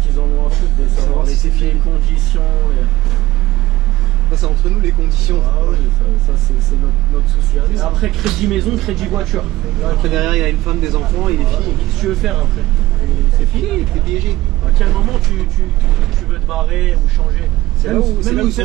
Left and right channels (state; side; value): quieter; left; 17.3 dB